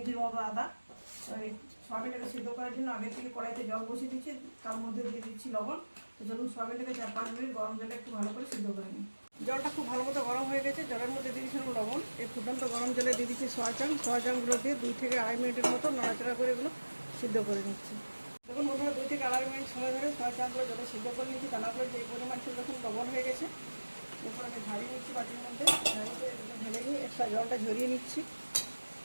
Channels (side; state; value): both; inverted; correlation -1.00